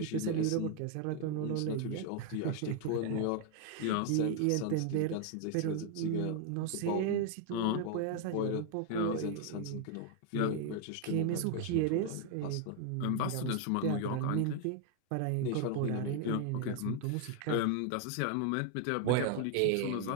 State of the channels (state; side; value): different; both; correlation 0.01